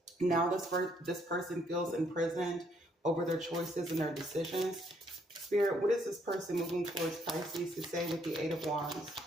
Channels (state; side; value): normal; both; correlation 0.70